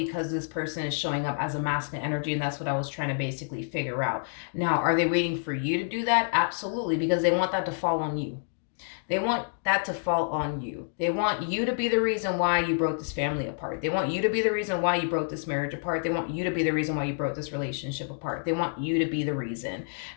this person is showing up as a masculine energy, and that's what I was trying to basically figure out. Now, are they waiting for you to do that? Absolutely, because they want that to fall on you. They want that to fall on you. They want you to be the reason why you broke this family apart. They want you to be the reason why you broke this marriage apart. They want you to be the reason why you broke this relationship apart. They want you to be the reason.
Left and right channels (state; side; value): silent; right; digital silence